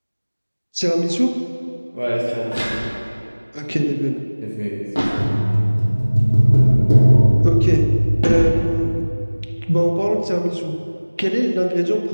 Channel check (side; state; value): both; inverted; correlation -1.00